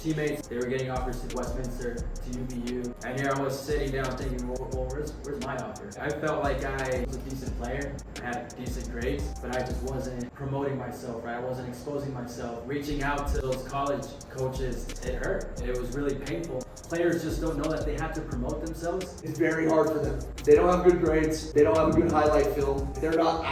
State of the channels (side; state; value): both; identical; correlation 1.00